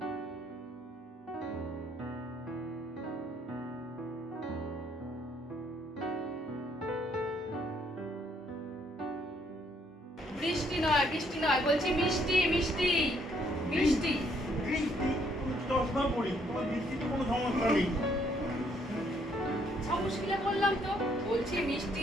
বৃষ্টি নয়, বৃষ্টি নয়, বলছি মিষ্টি, মিষ্টি, মিষ্টি। বৃষ্টি চশমা পড়ি, তোমার বৃষ্টিতে কোনো সমস্যা নেই। মুশকিলে বললাম তো, বলছি মিষ্টি,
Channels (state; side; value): normal; both; correlation 0.68